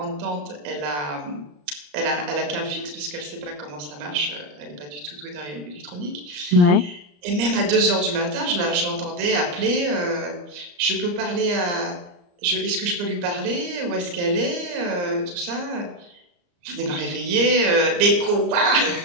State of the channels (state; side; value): late; left; 34 ms